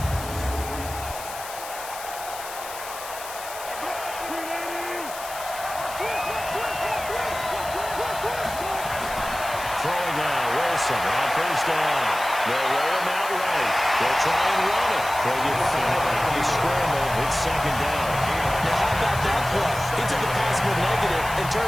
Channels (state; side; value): noise; left; hiss, 12 dB below the sound